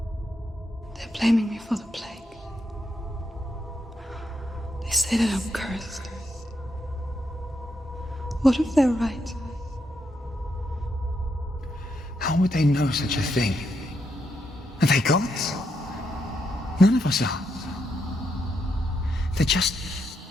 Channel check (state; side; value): normal; both; correlation 0.80